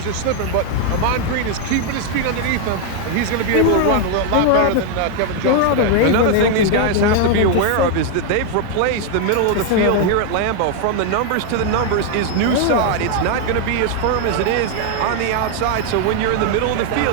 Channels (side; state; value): both; different; correlation 0.00